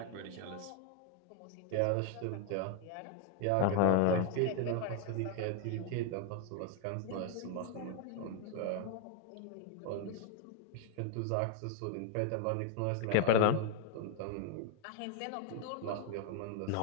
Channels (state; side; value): different; both; correlation 0.00